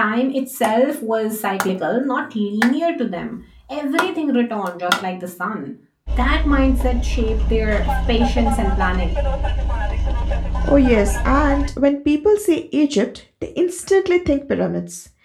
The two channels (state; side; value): identical; both; correlation 1.00